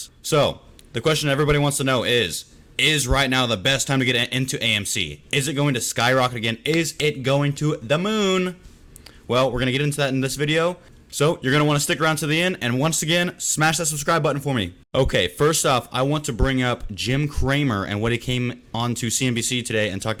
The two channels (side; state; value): both; identical; correlation 1.00